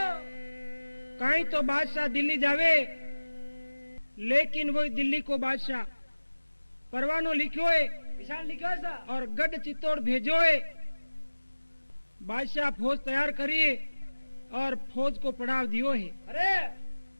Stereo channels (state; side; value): inverted; both; correlation -1.00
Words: कहीं तो बादशाह दिल्ली जावे लेकिन वो दिल्ली को बादशाह परवानो लिखो है किसान लिखो सा। और गढ़ चित्तौड़ भेजो है। बादशाह फौज तैयार करिए और फौज को पड़ाव दियो है। अरे